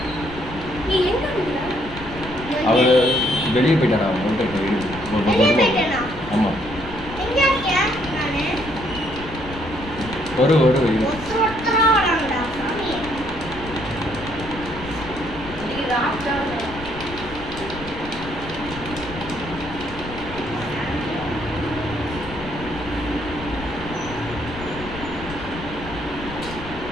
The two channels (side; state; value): left; noise; rumble, 12 dB below the sound